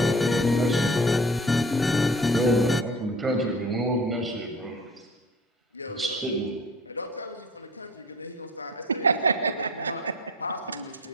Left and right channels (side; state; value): both; normal; correlation 0.44